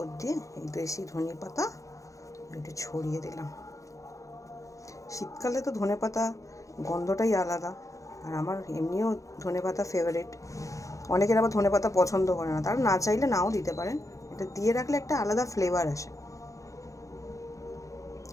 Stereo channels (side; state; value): right; late; 0.16 ms